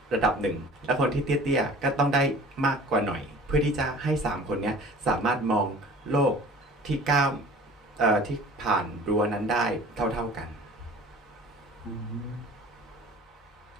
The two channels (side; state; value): both; normal; correlation 0.46